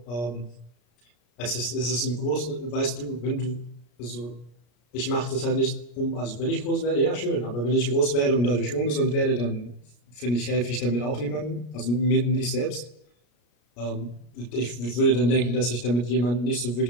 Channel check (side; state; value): right; late; 33 ms